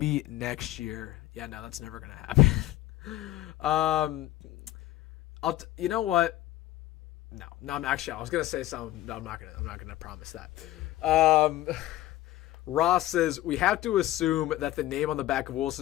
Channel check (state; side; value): quieter; right; 15.1 dB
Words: next year. Yeah, no, that's never going to happen. You know what? No, I was gonna say something. No, I'm not gonna promise that. Ross says we have to assume that the name on the back of